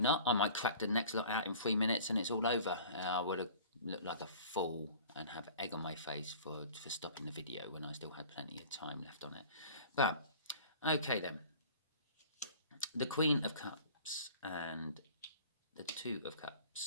I might crack the next lot out in 3 minutes and it's all over. I would have looked like a fool and have egg on my face for stopping the video when I still had plenty of time left on it. But okay then, the Queen of Cups and the Two of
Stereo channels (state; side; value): inverted; both; correlation -0.45